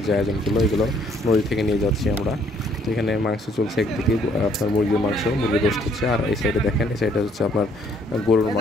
যে আয়োজনগুলো এগুলো নদী থেকে নিয়ে যাচ্ছি আমরা। তো এখানে মাংস চলছে, একদিকে আপনার মুরগির মাংস, মুরগির রোস্ট হচ্ছে, আর এই সাইডে দেখেন, এই সাইডে হচ্ছে আপনার গরুর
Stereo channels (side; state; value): both; normal; correlation 0.65